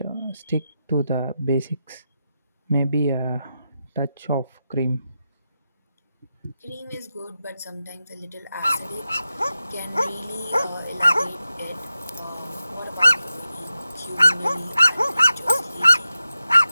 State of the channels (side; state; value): both; inverted; correlation -0.90